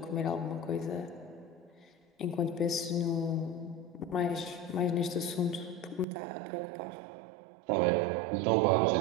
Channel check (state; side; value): drops out; left; at 6.1 s